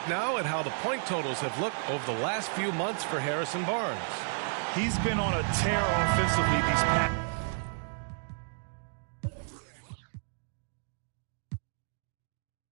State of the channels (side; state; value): left; silent; 57 dB below the other